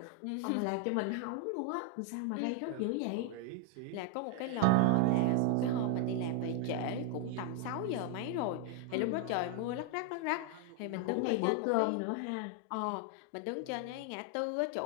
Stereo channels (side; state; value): both; different; correlation 0.00